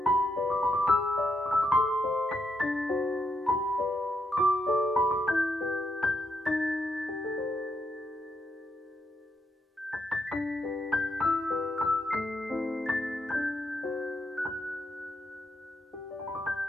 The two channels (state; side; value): normal; both; correlation 0.80